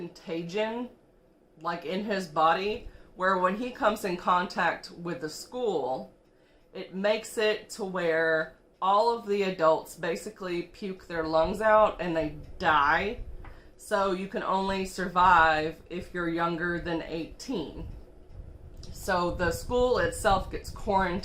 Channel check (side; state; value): both; identical; correlation 1.00